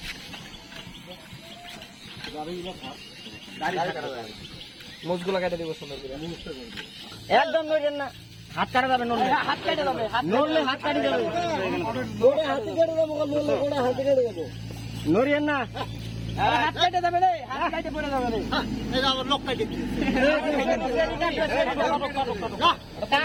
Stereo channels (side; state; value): both; identical; correlation 1.00